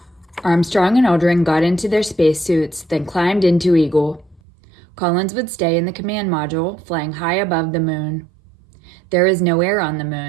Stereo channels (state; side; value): drops out; left; at 4.4 s